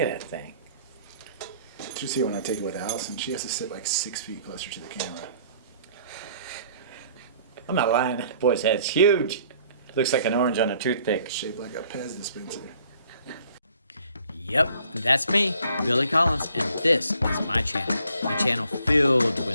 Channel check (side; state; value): both; inverted; correlation -0.60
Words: at that thing. Did you see when I take it with Allison? She has to sit like 6 feet closer to the camera. I'm not lying. That boy's head's huge. Looks like an orange on a toothpick. Shaped like a Pez dispenser. Yep, that's me, Billy Collins, and this is my channel. A channel filled